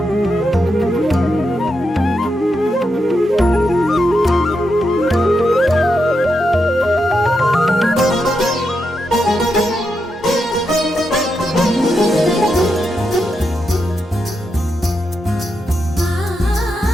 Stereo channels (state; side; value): normal; both; correlation 0.84